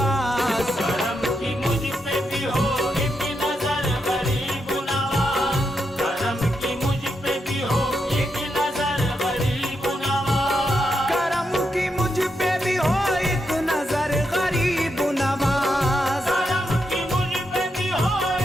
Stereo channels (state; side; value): normal; both; correlation 0.83